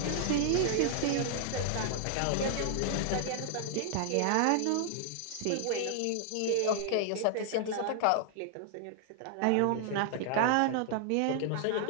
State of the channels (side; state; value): both; different; correlation 0.00